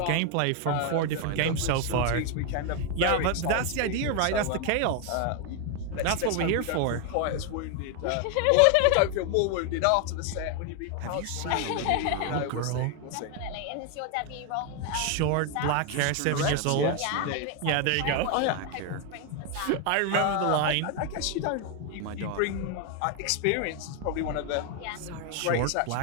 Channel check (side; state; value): both; different; correlation 0.01